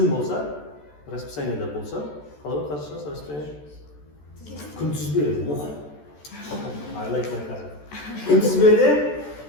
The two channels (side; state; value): right; late; 14 ms